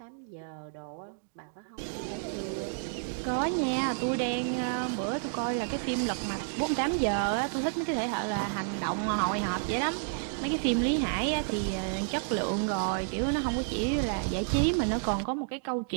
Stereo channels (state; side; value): silent; left; digital silence